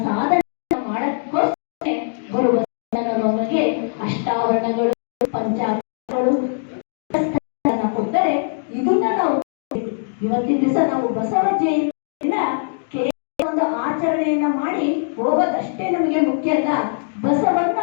ಸಾಧನೆ ಮಾಡಕ್ಕೋಸ್ಕರ ಬರುವ ನಮಗೆ ಅಷ್ಟಾವರಣಗಳು, ಪಂಚಾಕ್ಷರಗಳು ಕೊಡ್ತಾರೆ. ಇದನ್ನ ನಾವು ಇವತ್ತಿನ ದಿವಸ ನಾವು ಬಸವ ಜಯಂತಿಯಿಂದ ಒಂದು ಆಚರಣೆಯನ್ನ ಮಾಡಿ ಹೋಗೋದಷ್ಟೇ ನಮಗೆ ಮುಖ್ಯ ಅಲ್ಲ.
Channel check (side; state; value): right; silent; digital silence